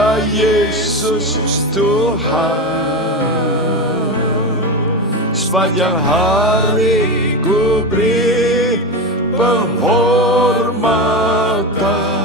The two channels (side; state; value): both; normal; correlation 0.19